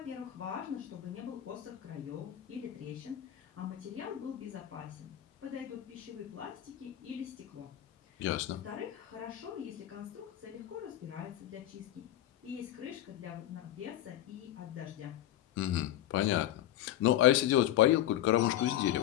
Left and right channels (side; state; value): right; quieter; 12.8 dB